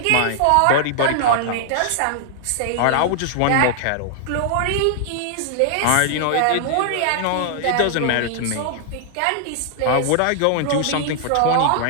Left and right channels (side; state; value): both; different; correlation -0.01